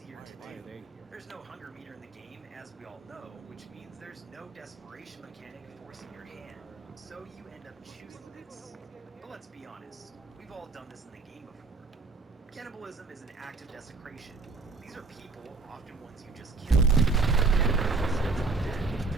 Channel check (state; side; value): quieter; left; 4.0 dB